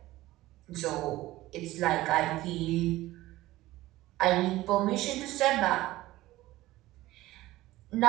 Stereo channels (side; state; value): left; quieter; 17.0 dB